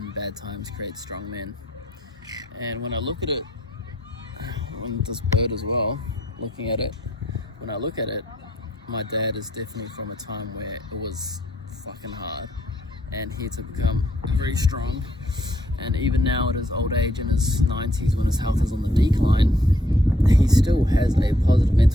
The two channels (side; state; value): both; normal; correlation 0.69